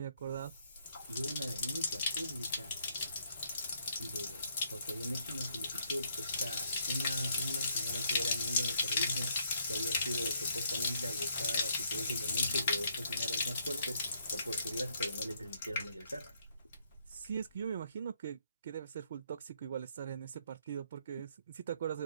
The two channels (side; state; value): both; inverted; correlation -0.69